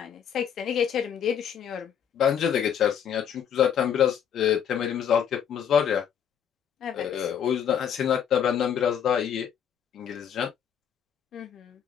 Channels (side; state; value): right; quieter; 8.6 dB